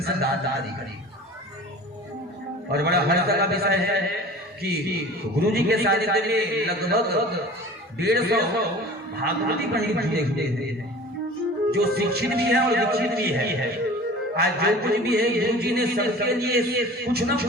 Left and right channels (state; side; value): normal; both; correlation 0.41